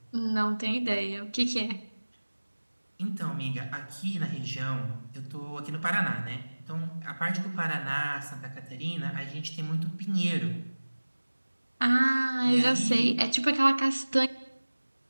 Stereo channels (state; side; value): inverted; both; correlation -1.00